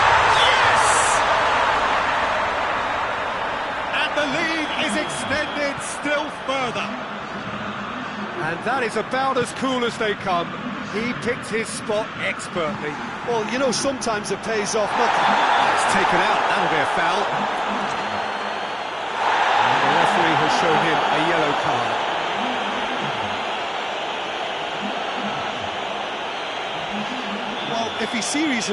Yes! And the lead is extended still further. And that is about as cool as they come. He picked his spot expertly. Well, you know, sometimes it pays off nothing. It's taken out, that'll be a foul. And the referee has shown him a yellow card. Well, if he's serious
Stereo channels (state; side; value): identical; both; correlation 1.00